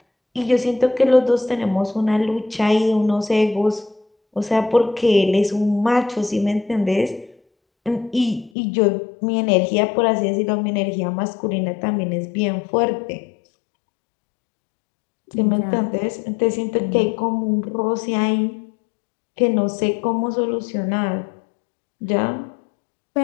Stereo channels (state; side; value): drops out; right; at 8.5 s